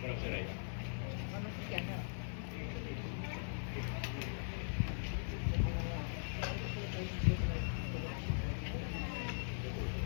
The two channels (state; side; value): silent; right; 51 dB below the other